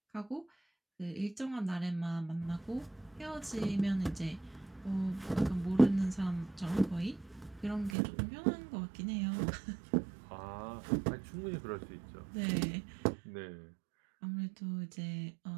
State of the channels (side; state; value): left; drops out; at 8.0 s